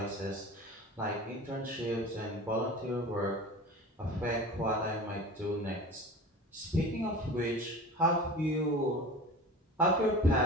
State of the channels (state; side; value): normal; both; correlation 0.36